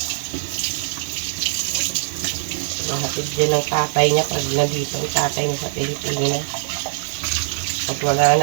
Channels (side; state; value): left; silent; digital silence